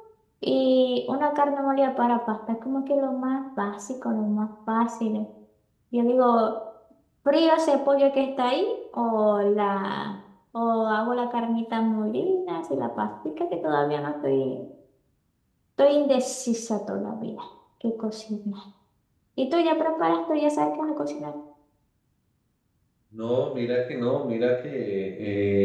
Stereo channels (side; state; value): both; identical; correlation 1.00